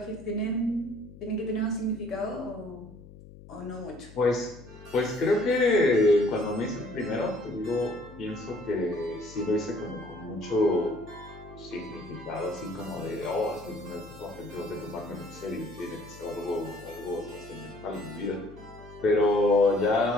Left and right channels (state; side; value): noise; left; hum, 18 dB below the sound